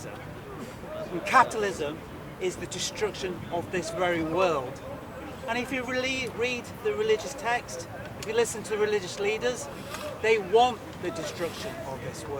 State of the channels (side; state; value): both; identical; correlation 1.00